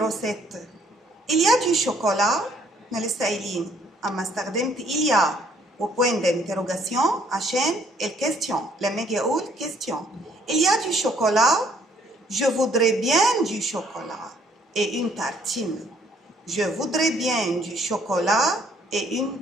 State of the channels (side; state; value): both; normal; correlation 0.63